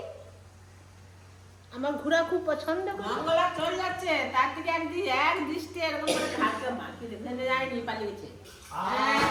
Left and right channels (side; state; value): both; identical; correlation 1.00